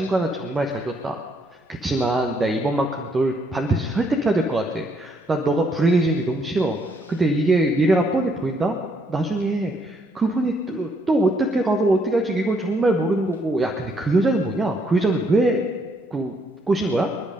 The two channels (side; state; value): both; normal; correlation 0.71